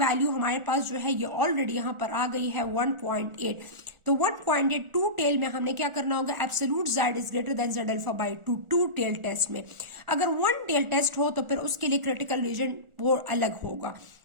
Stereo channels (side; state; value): left; late; 1.4 ms